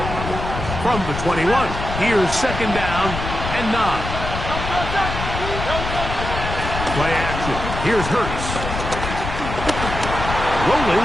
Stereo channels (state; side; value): noise; left; rumble, 5 dB below the sound